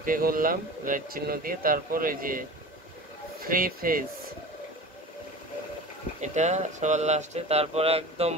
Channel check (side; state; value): both; normal; correlation 0.36